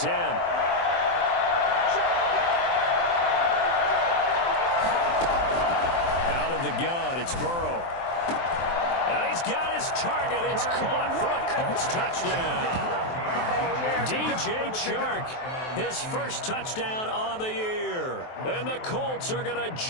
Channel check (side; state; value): right; late; 23 ms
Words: Out of the gun, it's Burrow. And he's got his target. It's caught for a Colts touchdown. DJ Chark, his first touchdown on the year. And the Colts are going to